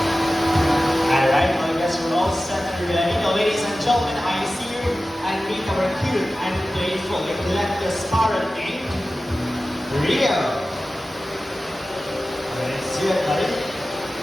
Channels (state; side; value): normal; both; correlation 0.95